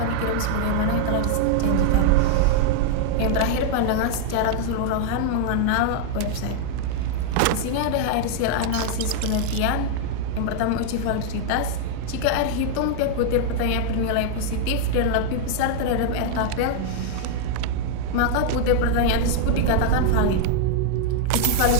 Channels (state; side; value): different; both; correlation 0.00